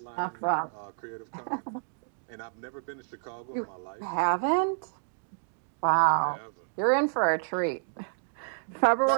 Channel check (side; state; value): left; silent; digital silence